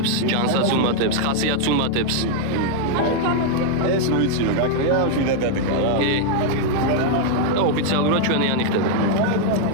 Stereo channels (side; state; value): both; different; correlation 0.00